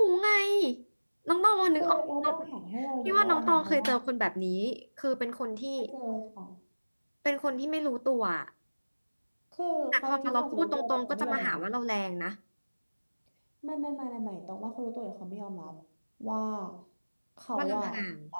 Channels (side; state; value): both; inverted; correlation -1.00